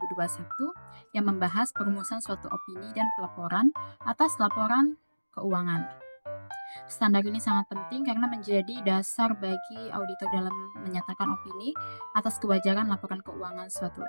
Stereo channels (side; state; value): both; inverted; correlation -1.00